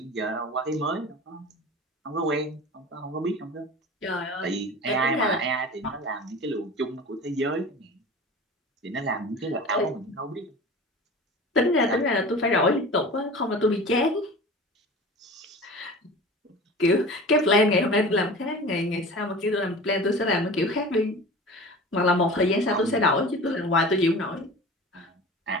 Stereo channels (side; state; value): both; normal; correlation 0.37